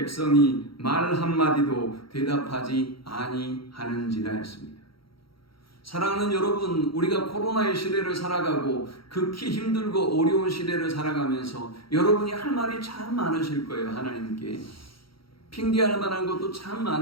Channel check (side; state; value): right; late; 0.74 ms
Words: 말 한마디도 대답하지 아니하는지라 했습니다. 사랑하는 여러분, 우리가 코로나의 시대를 살아가고 극히 힘들고 어려운 시대를 살아가면서 여러분이 할 말이 참 많으실 거예요. 하나님께 핑계할 만한 것도 참